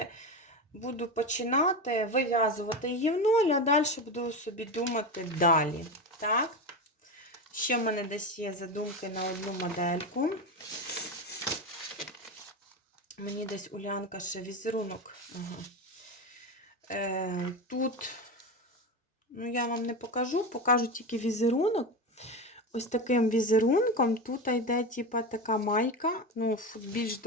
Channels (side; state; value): both; normal; correlation 0.20